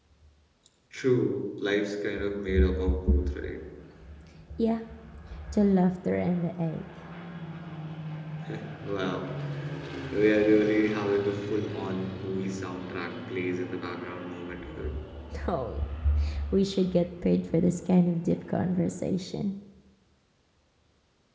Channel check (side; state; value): both; identical; correlation 1.00